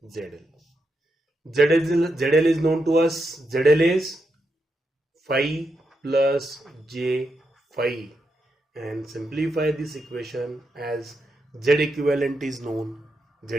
ZL. ZL is known to us. ZL is phi plus J phi, and simplify this equation as Z equivalent is known. Z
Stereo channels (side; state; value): both; normal; correlation 0.84